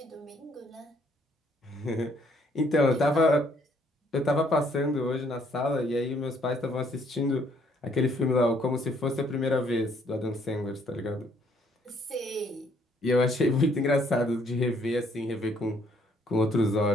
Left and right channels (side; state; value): both; normal; correlation 0.66